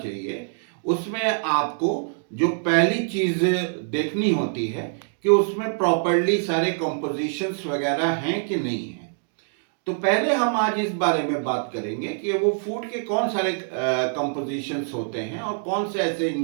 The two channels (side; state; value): left; silent; digital silence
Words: उसमें आपको जो पहली चीज़ देखनी होती है कि उसमें प्रॉपरली सारे कंपोजिशंस वगैरह हैं कि नहीं है। तो पहले हम आज इस बारे में बात करेंगे कि वो फूड के कौन सारे कंपोजिशंस होते हैं और कौन से ऐसे